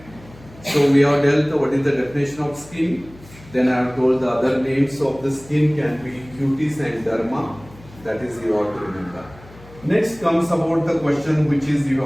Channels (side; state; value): left; noise; hum, 22 dB below the sound